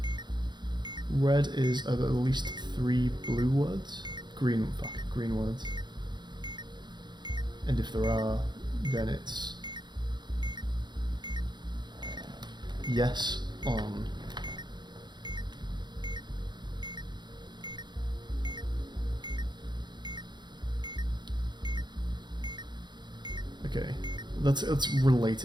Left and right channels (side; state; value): left; late; 0.21 ms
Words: Red is at least 3 blue words. Green words. And if there are, then it's yes on okay. It's